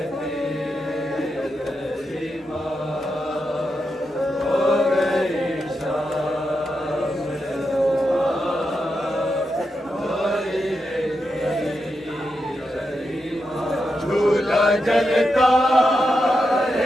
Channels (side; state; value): both; normal; correlation 0.86